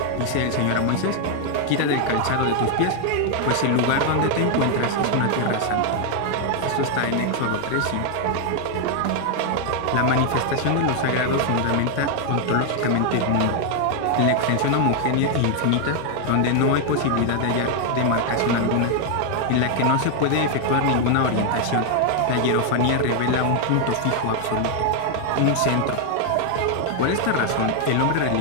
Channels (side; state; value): both; different; correlation 0.00